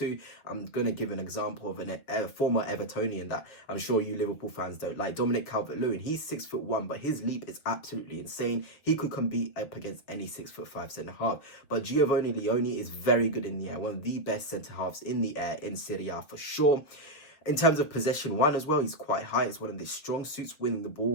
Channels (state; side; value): late; right; 7.0 ms